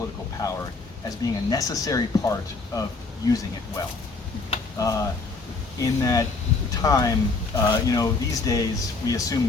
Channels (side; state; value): right; quieter; 3.9 dB